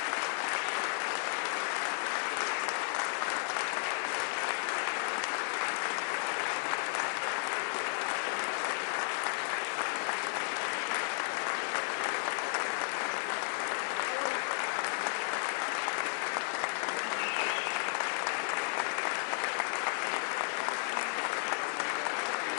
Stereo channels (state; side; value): silent; right; 55 dB below the other